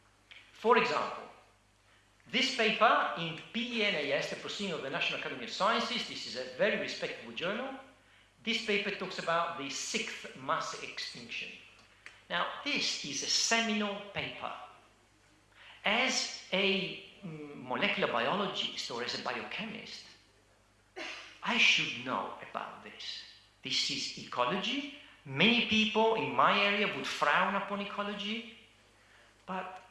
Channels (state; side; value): identical; both; correlation 1.00